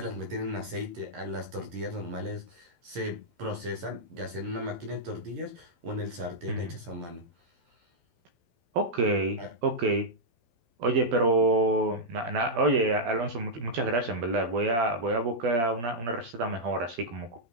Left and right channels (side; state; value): left; late; 12 ms